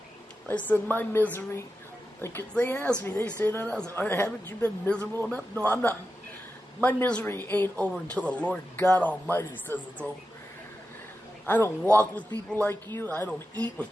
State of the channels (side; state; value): both; normal; correlation 0.90